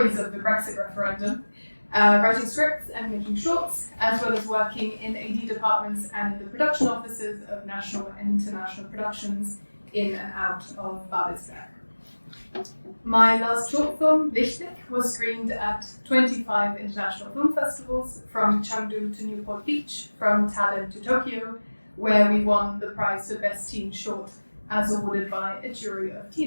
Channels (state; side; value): inverted; both; correlation -1.00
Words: of the Brexit referendum. Writing scripts and making shorts, as well as working in AD departments and in the production offices of national and international productions in and out of Babelsberg. My last short film, Lichtblick, was screened at 25 international film festivals, from Chengdu to Newport Beach, from Tallinn to Tokyo, where we won the prize for Best Teen Short, as awarded by a jury of